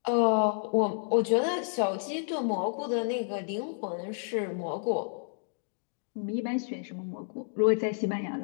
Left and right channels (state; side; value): silent; right; digital silence